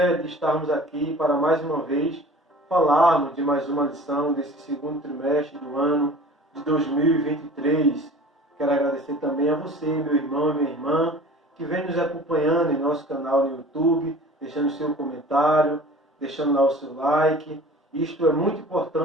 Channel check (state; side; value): normal; both; correlation 0.44